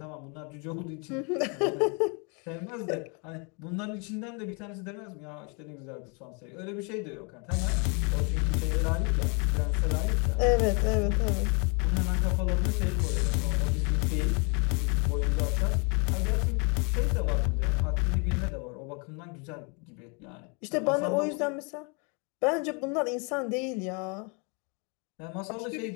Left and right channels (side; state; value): right; quieter; 34.4 dB